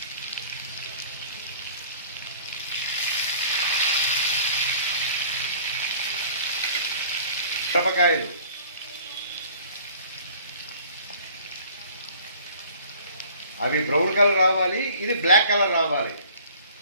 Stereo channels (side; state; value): both; inverted; correlation -0.50